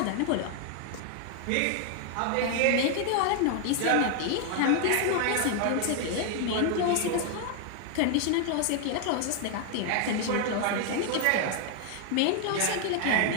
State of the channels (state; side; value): different; both; correlation 0.00